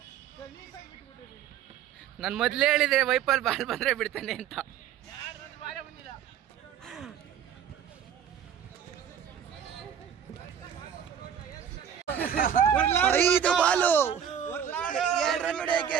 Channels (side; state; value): left; quieter; 8.8 dB